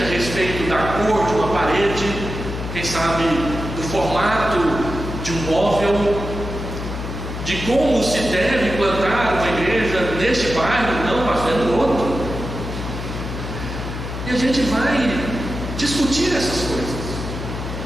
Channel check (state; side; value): noise; left; hum, 6 dB below the sound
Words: a respeito da cor de uma parede, quem sabe do formato de um móvel, de como se deve plantar uma igreja neste bairro, não, pastor, é no outro. E a gente vai discutir essas coisas.